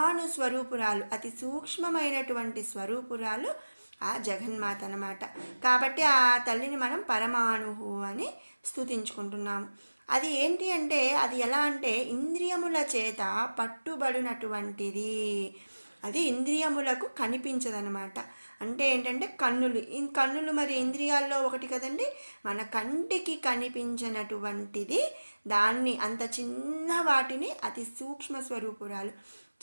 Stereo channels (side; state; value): both; inverted; correlation -1.00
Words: స్వరూపురాలు, అతి సూక్ష్మమైనటువంటి స్వరూపురాలు ఆ జగన్మాత అన్నమాట. కాబట్టి ఆ తల్లిని మనం పరమాణువు అని స్తుతించుకుంటున్నాము. అది ఏంటి అంటే, అది ఎలా అంటే ఇంద్రియముల చేత పట్టుబడినటువంటిది. అది ఇంద్రియములకు కనిపించదనమాట. అంటే ఏంటంటే కన్నులు మరి ఇంద్రియాల్లో ఒకటి కదండి. మన కంటికి కనిపించినటువంటిది, దాన్ని అంత చిన్న వాటిని అతి సూక్ష్మ స్వరూపురాలు.